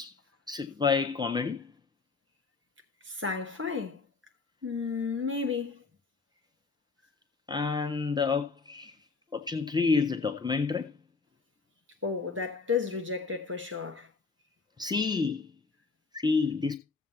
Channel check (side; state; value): right; quieter; 4.5 dB